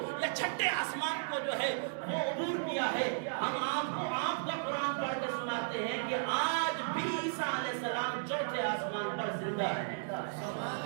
یا چھٹے آسمان کو جو ہے وہ عبور کیا ہے۔ ہم آپ کا قرآن پڑھ کے سناتے ہیں کہ آج بھی عیسیٰ علیہ السلام چوتھے آسمان پر زندہ ہے۔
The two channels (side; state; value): left; silent; digital silence